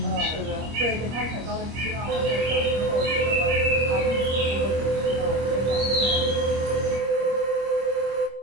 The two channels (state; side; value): late; left; 25 ms